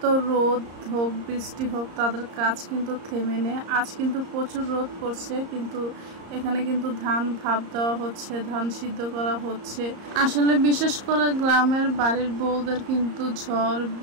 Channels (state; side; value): late; left; 34 ms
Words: রোদ হোক বৃষ্টি হোক তাদের কাজ কিন্তু থেমে নেই। আজ কিন্তু প্রচুর রোদ পড়ছে, কিন্তু এখানে কিন্তু ধান ভাপ দেওয়া হচ্ছে, ধান সিদ্ধ করা হচ্ছে। আসলে বিশেষ করে গ্রামের বাড়ির বউদের কিন্তু ঝড়